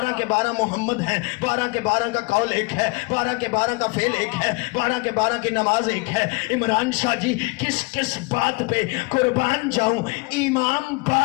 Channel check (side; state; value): right; quieter; 26.7 dB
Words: کے 12 محمد ہیں، 12 کے 12 کا قول ایک ہے، 12 کے 12 کا فعل ایک ہے، 12 کے 12 کی نماز ایک ہے۔ عمران شاہ جی کس کس بات پہ قربان جاؤں؟ امام